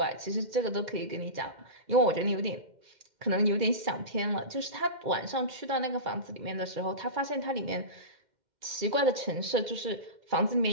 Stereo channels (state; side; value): late; left; 2.1 ms